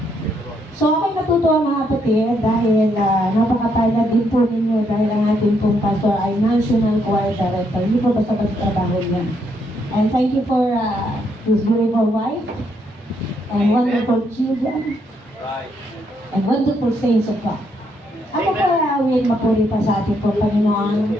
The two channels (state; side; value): normal; both; correlation 0.75